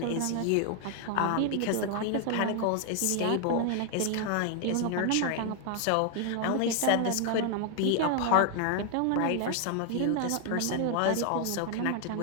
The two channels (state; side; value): different; both; correlation 0.00